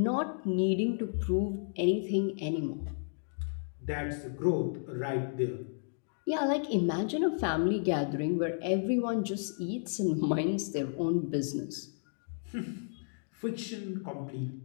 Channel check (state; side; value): silent; right; digital silence